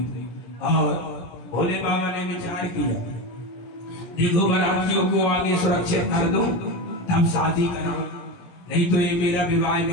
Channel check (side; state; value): right; late; 17 ms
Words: और भोले बाबा ने विचार किया, देखो बारातियों को आगे सुरक्षित कर दो तब शादी कराओ, नहीं तो ये मेरा विवाह